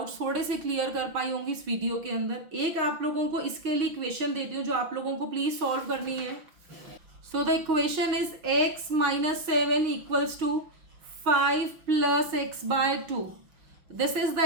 थोड़े से क्लियर कर पाई होंगी इस वीडियो के अंदर। एक आप लोगों को इसके लिए इक्वेशन देती हूँ जो आप लोगों को प्लीज सॉल्व करनी है। So the equation is x - 7 equals to 5 + x/2। This is the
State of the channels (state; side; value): late; left; 6.0 ms